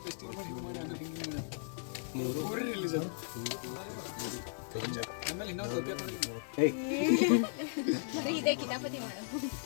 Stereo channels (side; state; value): right; silent; 54 dB below the other